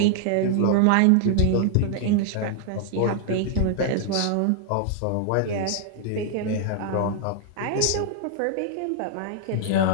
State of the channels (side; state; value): both; different; correlation -0.01